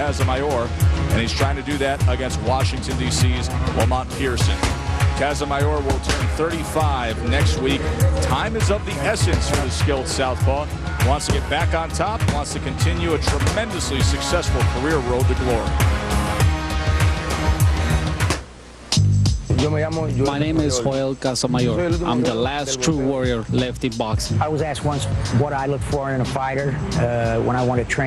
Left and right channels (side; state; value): both; identical; correlation 1.00